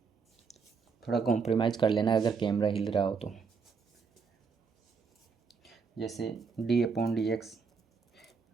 थोड़ा कॉम्प्रोमाइज़ कर लेना अगर कैमरा हिल रहा हो तो। जैसे d upon d x,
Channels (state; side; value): quieter; left; 5.4 dB